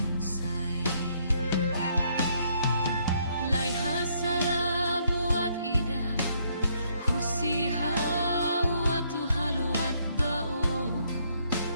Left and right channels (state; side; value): inverted; both; correlation -0.70